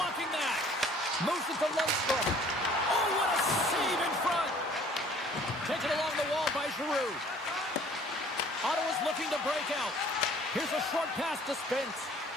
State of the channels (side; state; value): both; normal; correlation 0.54